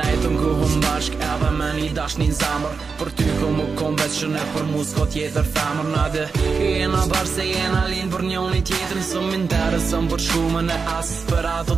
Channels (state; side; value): quieter; left; 5.0 dB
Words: ku hum bashk edhe me një dash një zamër për ty ku mu kom veç që ne për mu s'ko tjetër femër nade jena bashk se jena linë për njoni tjetër së m'interesën për shumën e as për ato